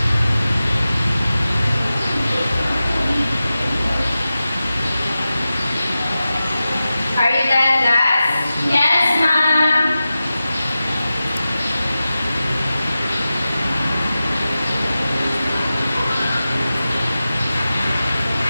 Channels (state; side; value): inverted; both; correlation -0.94